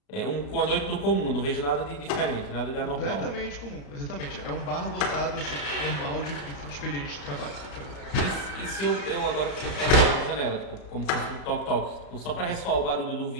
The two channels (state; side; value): late; right; 35 ms